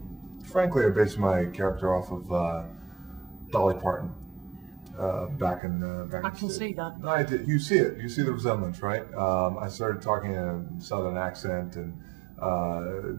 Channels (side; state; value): left; drops out; at 5.6 s